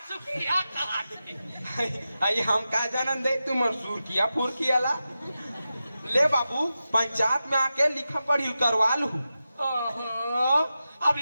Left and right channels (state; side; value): inverted; both; correlation -0.92